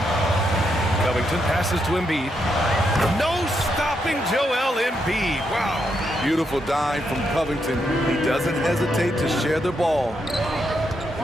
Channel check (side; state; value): both; normal; correlation 0.80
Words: Covington passes to Embiid. No stopping Joel Embiid. Wow. Beautiful dime from Covington. He doesn't hesitate to share the ball.